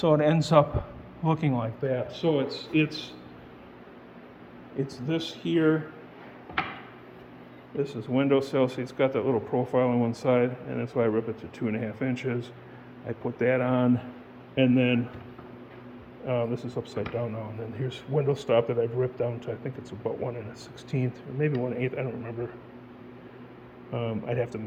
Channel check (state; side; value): identical; both; correlation 1.00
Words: it ends up looking like that. So it's this here. This is windowsill. See, it's got that little profile on one side, and that's why I rip it to 2.5 inches. I put that on, and then this is upside down now. And then here's window stop that I've ripped down to, I think it's about 1 1/16, or maybe 1/8. I don't remember. I'd have to